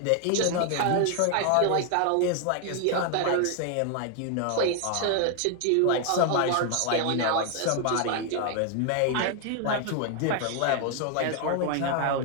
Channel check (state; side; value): different; both; correlation 0.00